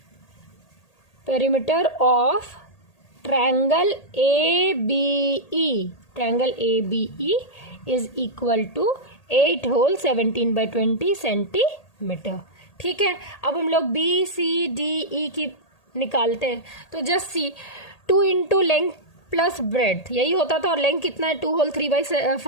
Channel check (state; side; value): late; right; 1.8 ms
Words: Perimeter of triangle ABE. Triangle ABE is equal to 8 whole 17/20 centimetre. ठीक है, अब हम लोग BCDE की निकालते हैं तो just see 2 into length plus bread यही होता था, और लेंथ कितना है 2 होल